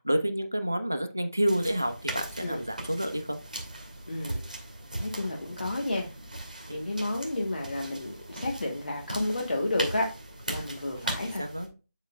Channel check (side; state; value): both; inverted; correlation -0.86